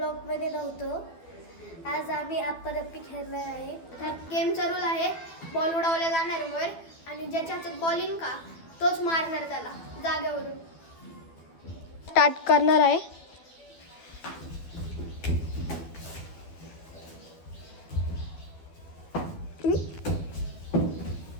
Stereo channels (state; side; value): late; right; 12 ms